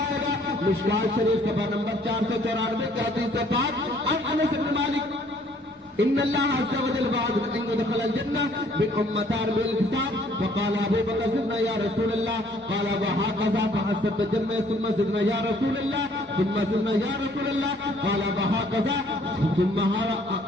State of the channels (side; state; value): both; normal; correlation 0.61